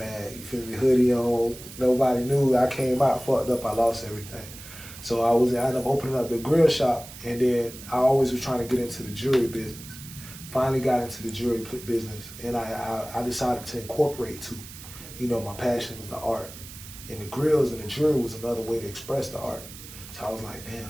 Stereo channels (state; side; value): noise; right; hiss, 15 dB below the sound